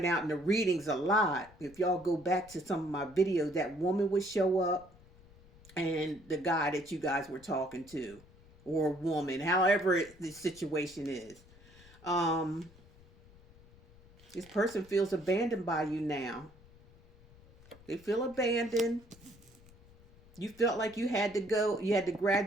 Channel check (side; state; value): left; noise; rumble, 24 dB below the sound